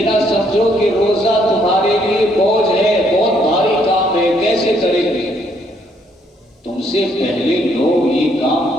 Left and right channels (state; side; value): normal; both; correlation 0.69